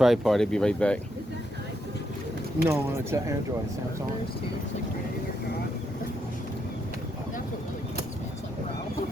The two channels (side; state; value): both; normal; correlation 0.79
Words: He'll be right back. No, it's an Android, Samsung.